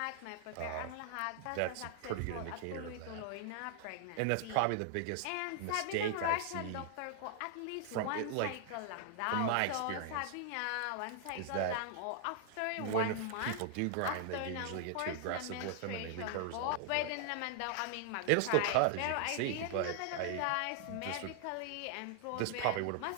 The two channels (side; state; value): both; different; correlation 0.00